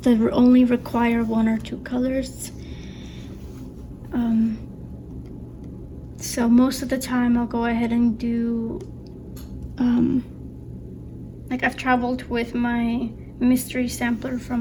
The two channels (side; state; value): both; identical; correlation 1.00